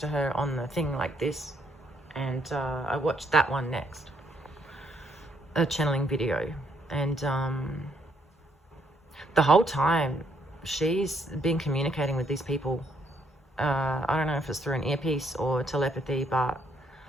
her on the thing like this. And I watched that one next, a channeling video. And the whole time she's been communicating with these people. I don't know if it's through an earpiece or telepathy, but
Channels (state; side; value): normal; both; correlation 0.71